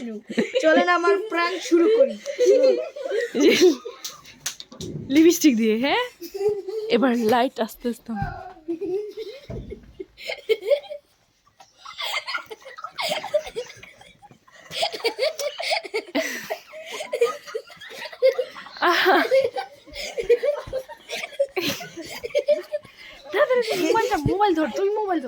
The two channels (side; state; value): both; identical; correlation 1.00